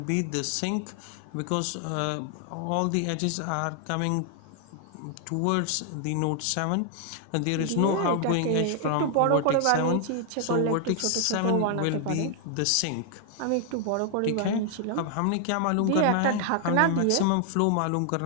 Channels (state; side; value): different; both; correlation 0.00